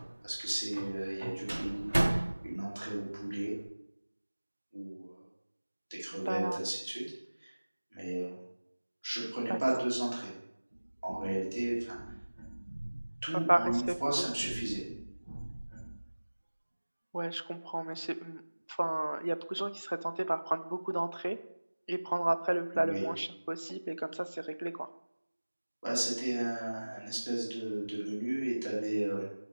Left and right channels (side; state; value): both; inverted; correlation -1.00